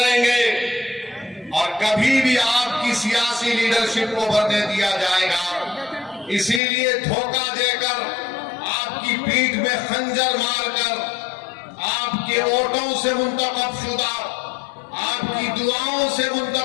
और कभी भी आपकी सियासी लीडरशिप को बढ़ने दिया जाएगा। इसीलिए धोखा देकर, आपकी पीठ में खंजर मारकर, आपके वोटों से मुंतखब शुदा, आपकी दुआओं से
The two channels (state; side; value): drops out; right; at 6.6 s